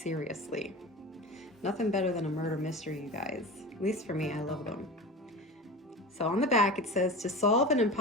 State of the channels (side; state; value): both; normal; correlation 0.30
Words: Nothing better than a murder mystery, you guys. At least for me, I love them. So on the back it says, to solve an